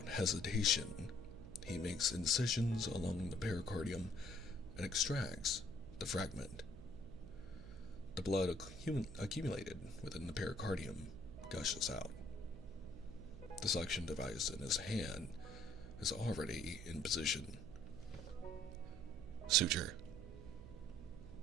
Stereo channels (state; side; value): noise; right; hum, 13 dB below the sound